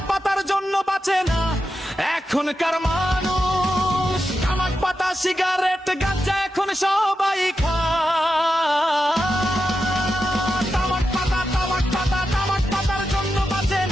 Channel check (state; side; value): normal; both; correlation 0.89